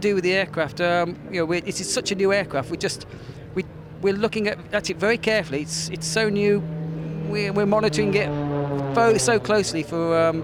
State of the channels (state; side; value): identical; both; correlation 1.00